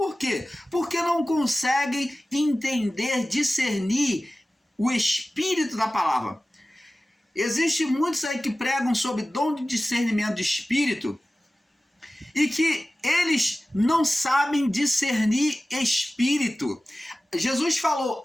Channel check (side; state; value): both; normal; correlation 0.96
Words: quê? Porque não conseguem entender, discernir o espírito da palavra. Existem muitos aí que pregam sobre dom de discernimento de espírito e que eles não sabem discernir espírito. Jesus falou,